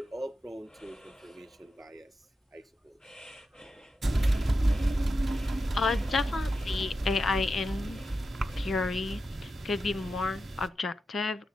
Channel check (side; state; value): both; normal; correlation 0.89